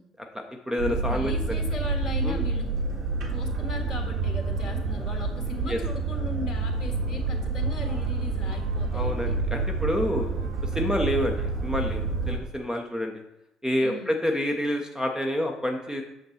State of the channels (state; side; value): normal; both; correlation 0.33